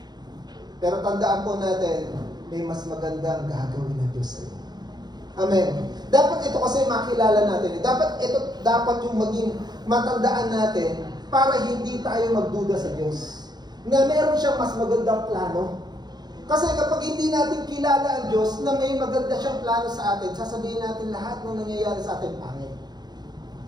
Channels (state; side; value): late; left; 0.20 ms